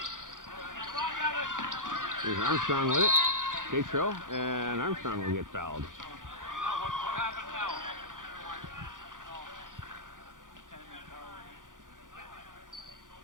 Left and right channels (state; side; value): late; left; 0.88 ms